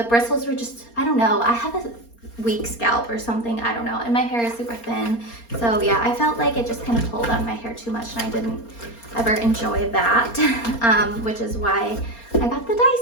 bristles were just, I don't know, I have a weak scalp or something, I don't know, and my hair is super thin, so yeah, I felt like it just kind of pulled on my hair too much, and I didn't ever enjoy that, which is why I got the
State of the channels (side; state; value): right; late; 4.3 ms